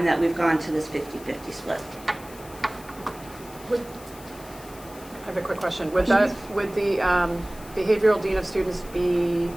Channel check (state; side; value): noise; left; hiss, 20 dB below the sound